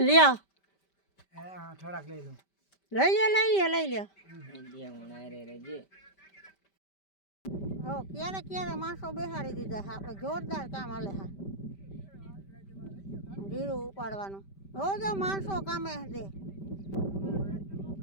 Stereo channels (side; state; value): right; late; 5.1 ms